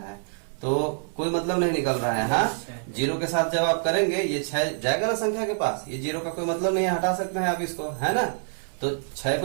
तो कोई मतलब नहीं निकल रहा है। हाँ, 0 के साथ जब आप करेंगे ये 6 जाएगा ना संख्या के पास, ये 0 का कोई मतलब नहीं है, हटा सकते हैं आप इसको, है ना। तो 6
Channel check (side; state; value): left; silent; 58 dB below the other